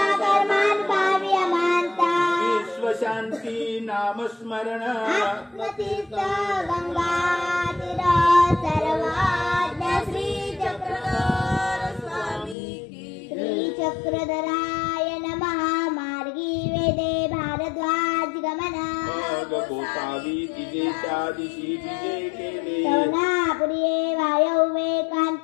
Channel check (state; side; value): drops out; right; at 12.6 s